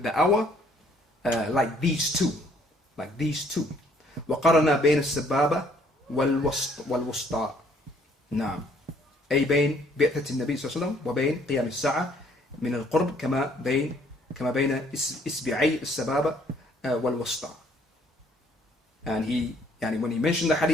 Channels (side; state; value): both; normal; correlation 0.63